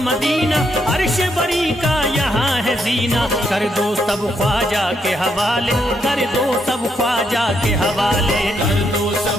अर्श बरी का यहाँ है जीना, कर दो सब ख्वाजा के हवाले, कर दो सब ख्वाजा के हवाले, कर दो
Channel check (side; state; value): both; normal; correlation 0.77